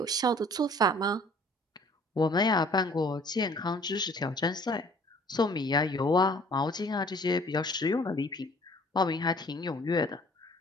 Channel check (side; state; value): both; normal; correlation 0.54